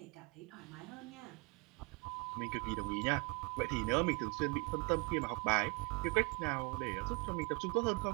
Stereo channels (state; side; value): quieter; left; 28.8 dB